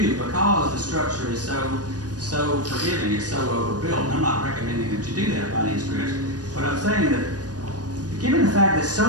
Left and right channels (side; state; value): left; late; 0.69 ms